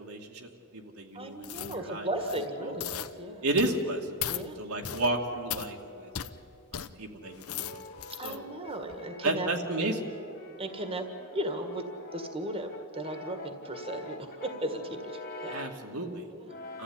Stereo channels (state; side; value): normal; both; correlation 0.01